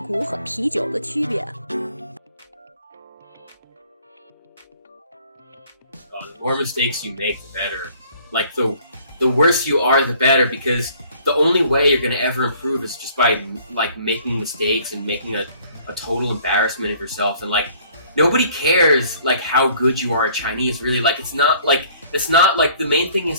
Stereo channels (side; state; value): both; inverted; correlation -0.57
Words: 和啤酒的区别。The more mistakes you make, the better. Like the worse you are, the better, because the only way you're gonna ever improve is just by like making mistakes and making a total embarrassment of yourself. And like nobody cares like how good you are at Chinese. Really, like it's not like the main thing is